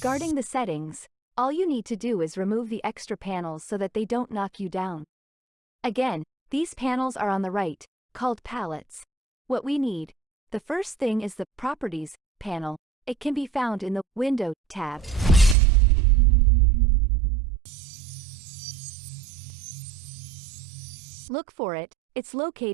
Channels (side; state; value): left; drops out; at 15.6 s